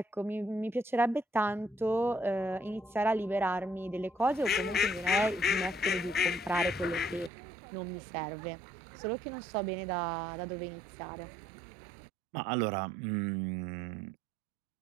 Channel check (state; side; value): drops out; left; at 7.3 s